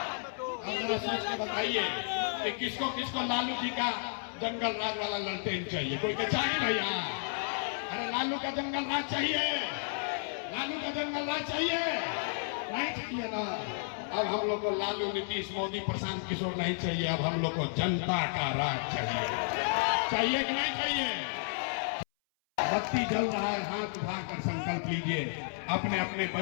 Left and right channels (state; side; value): silent; right; 56 dB below the other